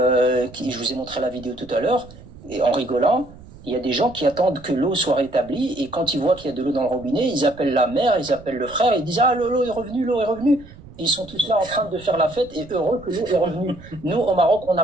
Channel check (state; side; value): noise; right; rumble, 19 dB below the sound